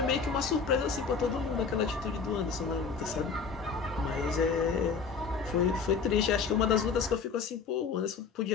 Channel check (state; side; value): quieter; right; 5.4 dB